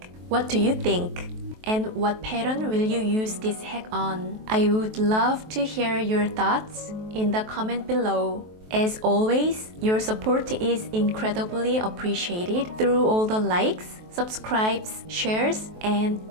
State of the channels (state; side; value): late; left; 23 ms